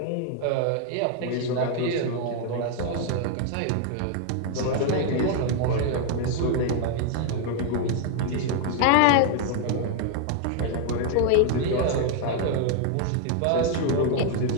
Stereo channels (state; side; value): different; both; correlation 0.00